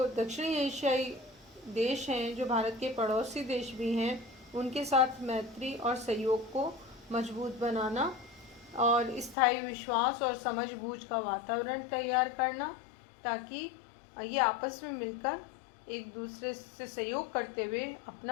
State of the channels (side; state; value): right; drops out; at 9.3 s